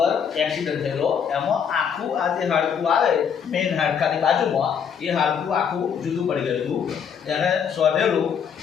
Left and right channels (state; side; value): quieter; right; 7.4 dB